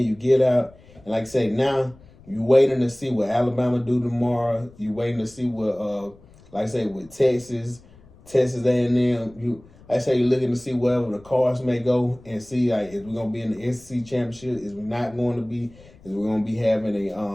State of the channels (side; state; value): left; noise; rumble, 25 dB below the sound